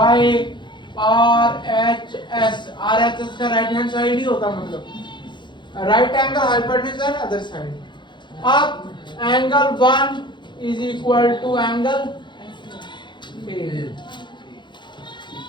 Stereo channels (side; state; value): right; late; 0.22 ms